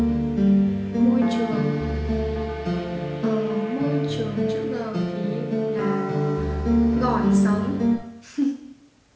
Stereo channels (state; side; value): identical; both; correlation 1.00